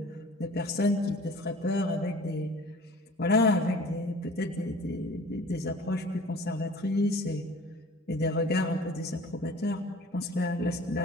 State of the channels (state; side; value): normal; both; correlation 0.46